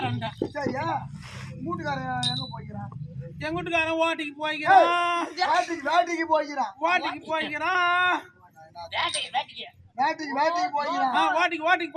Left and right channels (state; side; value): identical; both; correlation 1.00